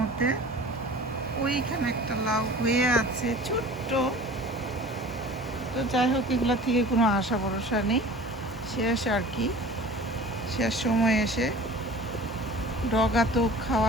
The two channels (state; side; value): normal; both; correlation 0.42